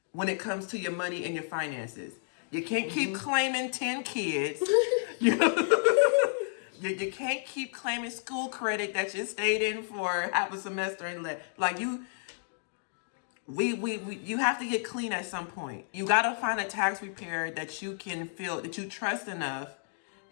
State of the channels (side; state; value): right; silent; digital silence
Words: when it comes to your money and your finances. You can't keep claiming 10 kids. You can't keep claiming school credit that you stayed in for half a semester and like you. You have to get clean at some point. You gotta find a tax preparer that you can feel that you trust enough.